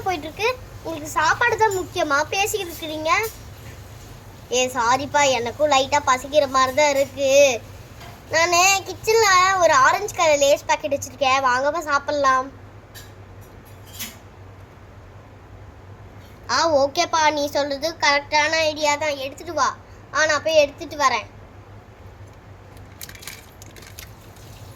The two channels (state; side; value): identical; both; correlation 1.00